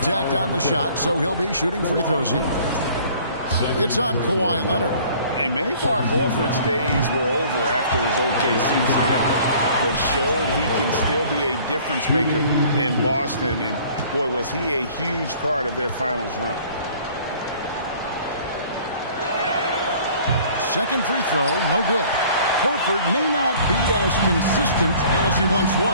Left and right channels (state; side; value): inverted; both; correlation -0.52